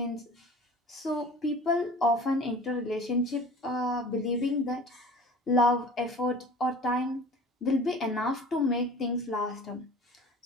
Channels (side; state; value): both; normal; correlation 0.42